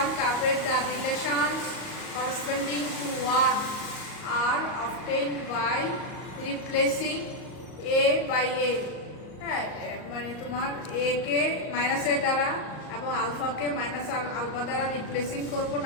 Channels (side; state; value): right; late; 38 ms